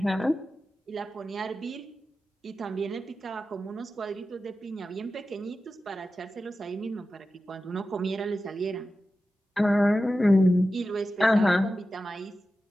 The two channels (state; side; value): normal; both; correlation 0.93